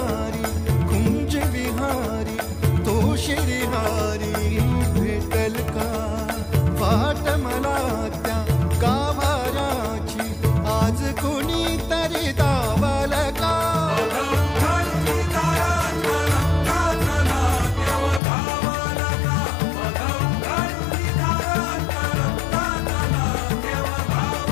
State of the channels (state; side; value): drops out; right; at 18.2 s